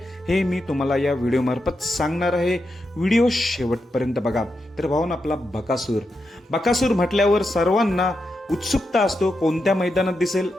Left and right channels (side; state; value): both; normal; correlation 0.86